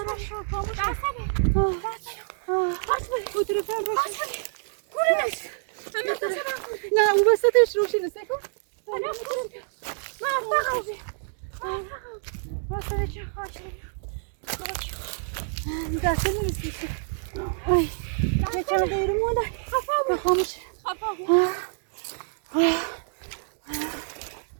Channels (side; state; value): left; silent; digital silence